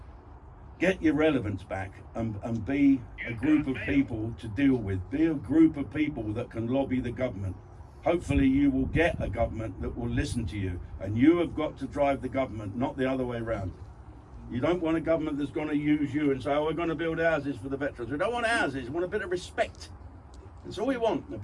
Get your relevance back and be a group of people to deal with. Be a group of people that can lobby the government. Hopefully you will get a government that will listen to you, and you have got to drive the government, not the other way around. You don't want a government that's going to use you and say, oh, we're going to build houses for the veterans. We don't want houses, we want a bit of respect. That's all we want, a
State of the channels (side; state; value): both; identical; correlation 1.00